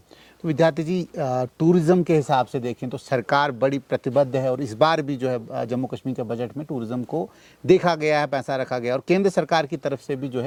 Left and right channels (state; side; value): identical; both; correlation 1.00